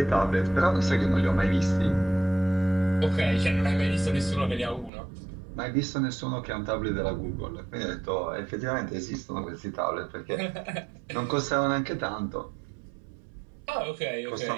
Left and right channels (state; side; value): drops out; left; at 4.9 s